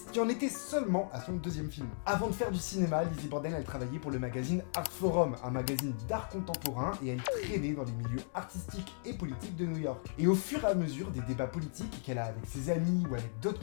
qui en était seulement à son deuxième film. Avant de faire du cinéma, Lizzie Borden, elle travaillait pour le magazine Art Forum, un magazine d'art contemporain, et elle traînait dans les milieux artistiques et politiques de New York. Et au fur et à mesure des débats politiques qu'elle a avec ses amis ou avec d'autres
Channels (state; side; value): silent; right; digital silence